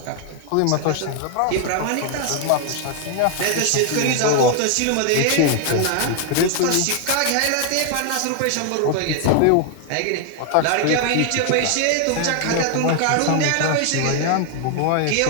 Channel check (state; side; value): different; both; correlation 0.00